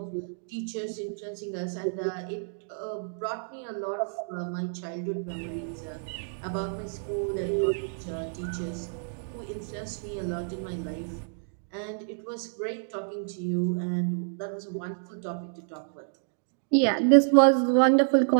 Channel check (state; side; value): silent; left; digital silence